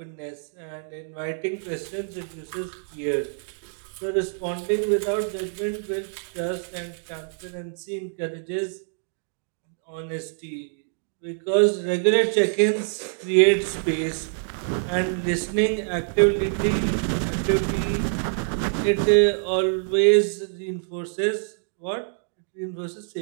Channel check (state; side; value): silent; left; digital silence